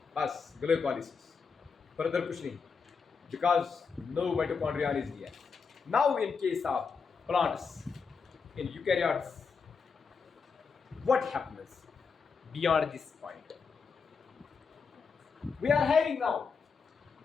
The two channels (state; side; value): quieter; right; 5.5 dB